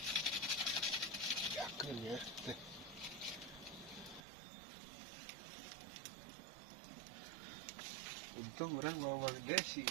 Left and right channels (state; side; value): drops out; left; at 4.2 s